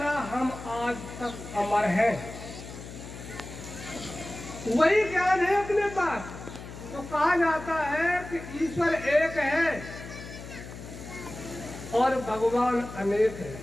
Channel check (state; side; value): noise; left; hum, 12 dB below the sound